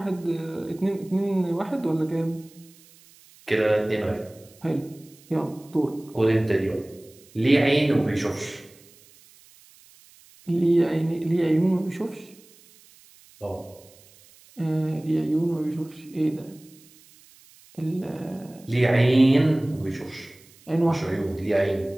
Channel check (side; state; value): right; noise; hiss, 26 dB below the sound